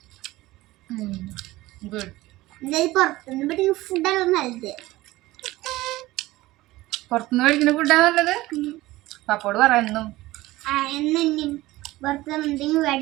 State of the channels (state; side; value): quieter; left; 18.2 dB